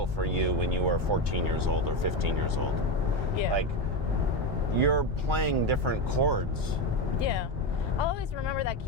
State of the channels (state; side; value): normal; both; correlation 0.15